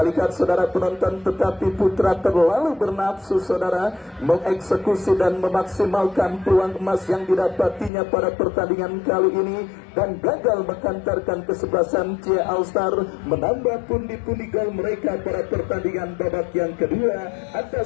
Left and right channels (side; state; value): right; drops out; at 7.9 s